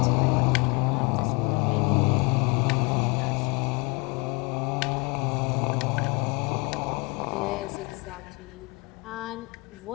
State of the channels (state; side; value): quieter; right; 28.7 dB